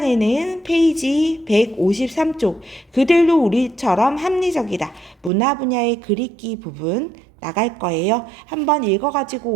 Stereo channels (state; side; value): drops out; left; at 5.3 s